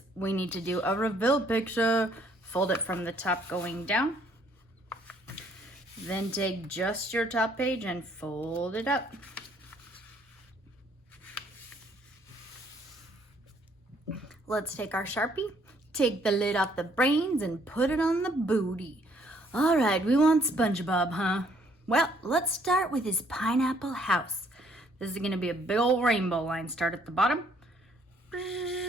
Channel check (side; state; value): both; normal; correlation 0.65